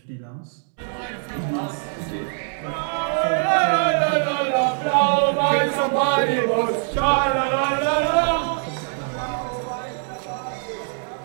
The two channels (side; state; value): left; silent; 56 dB below the other